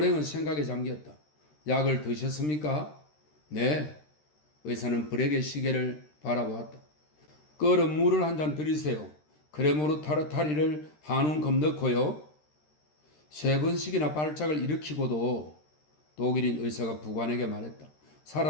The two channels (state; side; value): late; right; 13 ms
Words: 생각에 잠겼다. 약을 드셨습니까? 네. 의사는 불에게 시계를 바라보았다. 끓은 물을 한 잔 드리세요. 크레모르 타르타리를 한 움큼 넣고요. 3번씩이나 발작을 일으키고도 독일인 의사가 부관에게 말했다.